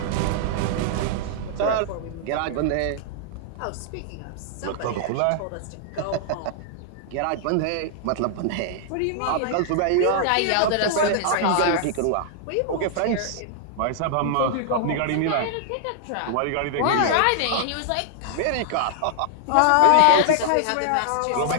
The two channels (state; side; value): different; both; correlation -0.01